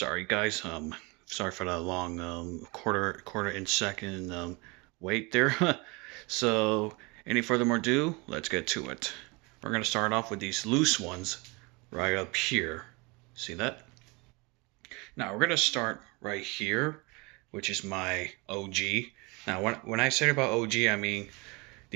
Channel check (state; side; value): quieter; left; 27.2 dB